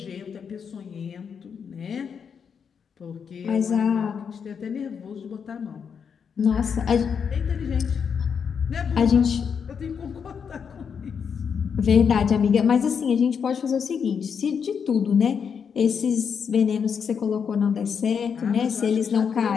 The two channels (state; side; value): quieter; right; 6.8 dB